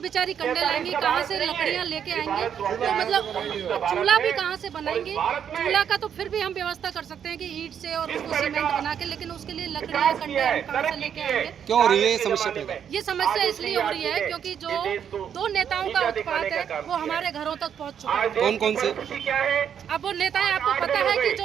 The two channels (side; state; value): left; quieter; 8.4 dB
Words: कंडे लाएंगी, कहाँ से लकड़ियाँ लेके आएंगी? तो मतलब चूल्हा भी कहाँ से बनाएंगी? चूल्हा का तो फिर भी हम व्यवस्था कर सकते हैं कि ईंट से और उसको सीमेंट बना के, लेकिन उसके लिए लकड़ियाँ कंडे हम कहाँ से लेके आएंगे? क्यों हो रही है ये समस्या? ये समस्या इसलिए हो रही है क्योंकि जो दो नेताओं का उत्पात है वो हमारे घरों तक पहुँच चुका है। कौन कौन से? अब वो नेताएं, आपको पता है कि